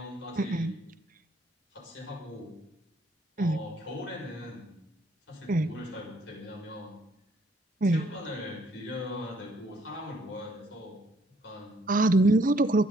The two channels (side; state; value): both; normal; correlation 0.66